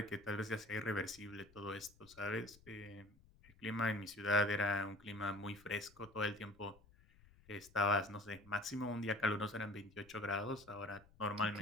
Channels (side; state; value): left; noise; rumble, 25 dB below the sound